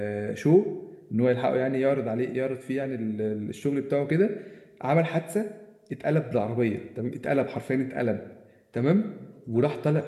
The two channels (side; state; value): both; identical; correlation 1.00